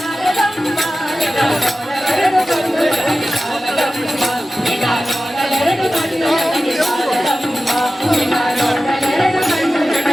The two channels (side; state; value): both; normal; correlation 0.94